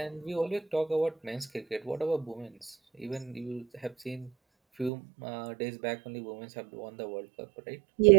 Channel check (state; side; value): drops out; left; at 4.9 s